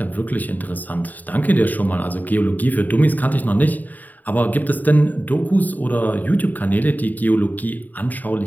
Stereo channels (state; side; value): late; right; 0.083 ms